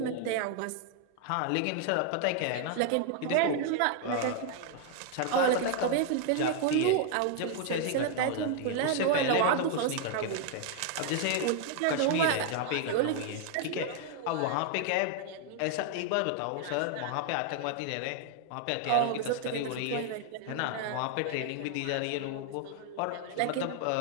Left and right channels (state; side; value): different; both; correlation 0.00